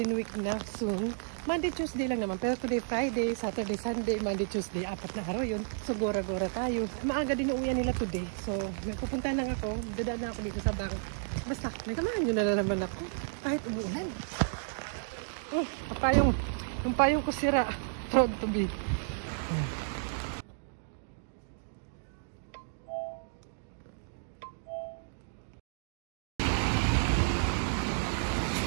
Week na soon. Monday, Tuesday lang naman. Pero today, Friday, Saturday, Sunday, Monday, Tuesday. 4 na araw yun. So, gora-gora tayo. Maaga din uuwian nila today. So, pupunta lang ako. Dadaan na ako dito sa bank. Basta, nagkamahan nyo na naman ako. Kahit umuulan. Oh, yung payong ko sira. Proud to be.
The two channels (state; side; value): silent; left; digital silence